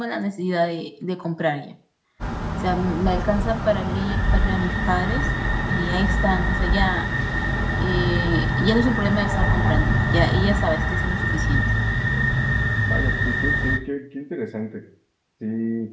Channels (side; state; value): both; identical; correlation 1.00